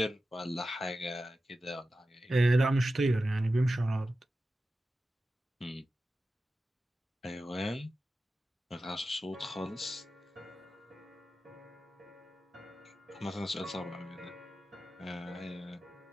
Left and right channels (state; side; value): normal; both; correlation 0.93